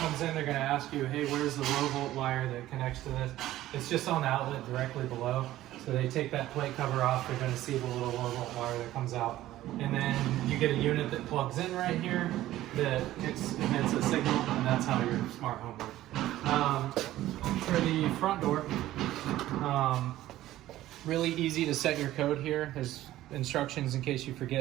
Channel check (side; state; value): left; quieter; 14.7 dB